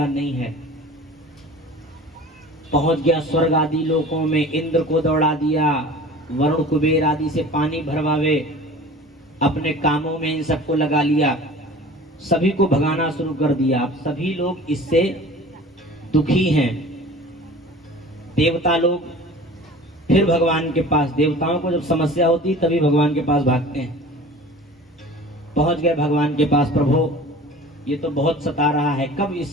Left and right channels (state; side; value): normal; both; correlation 0.42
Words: नहीं है। पहुंच गया स्वर्ग आदि लोकों में, इंद्र को दौड़ा दिया, वरुण कुबेर आदि से पानी भरवावे, अपने कामों में इन सबको लगा लिया, सभी को भगाना शुरू कर दिया। अब सभी लोग इससे दुखी हैं। देवता लोग फिर भगवान के पास, देवताओं को जब समस्या होती तभी भगवान के पास भागते हैं। पहुंच गए भगवान के पास, प्रभु ये तो बहुत सता रहा है, कब